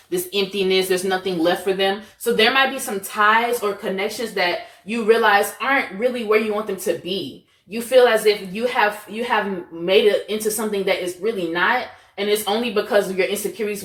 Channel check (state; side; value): identical; both; correlation 1.00